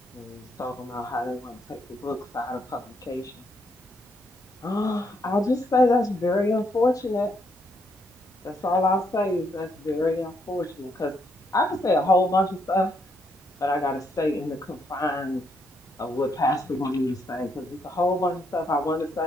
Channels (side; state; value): both; normal; correlation 0.75